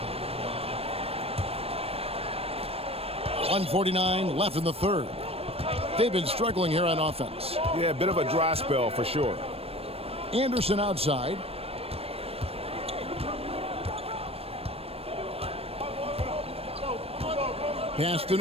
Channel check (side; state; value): left; late; 0.28 ms